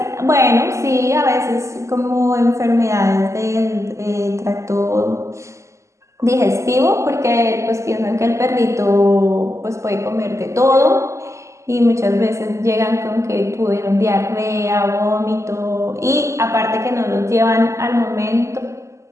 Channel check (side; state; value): left; late; 0.14 ms